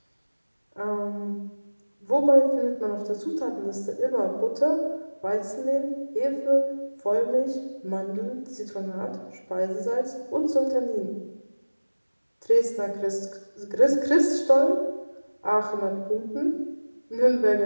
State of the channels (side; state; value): both; inverted; correlation -1.00